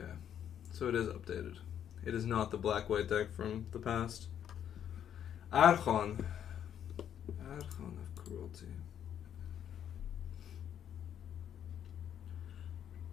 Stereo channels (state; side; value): quieter; right; 9.5 dB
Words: So it is updated. It is not the black-white deck from the past. Archon. Archon of Cruelty.